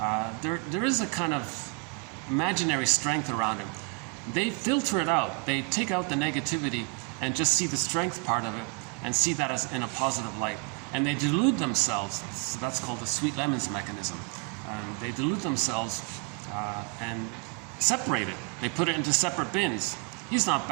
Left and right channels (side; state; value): left; quieter; 31.2 dB